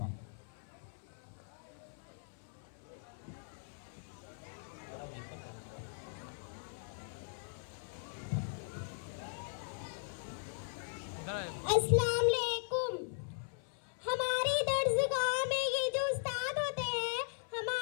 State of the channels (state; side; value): silent; right; 52 dB below the other